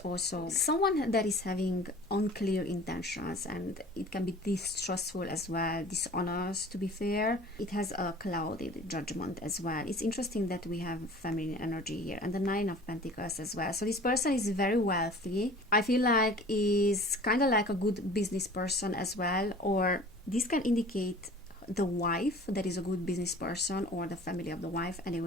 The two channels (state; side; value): normal; both; correlation 0.45